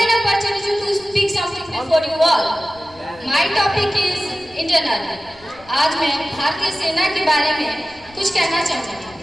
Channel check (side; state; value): left; noise; rumble, 25 dB below the sound